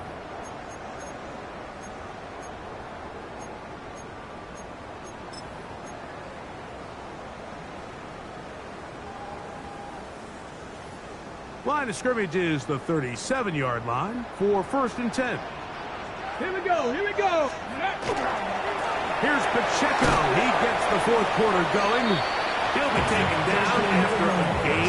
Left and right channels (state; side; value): identical; both; correlation 1.00